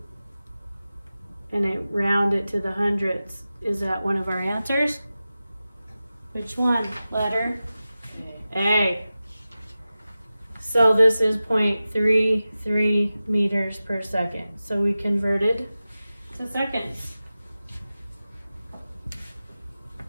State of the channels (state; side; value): inverted; both; correlation -0.95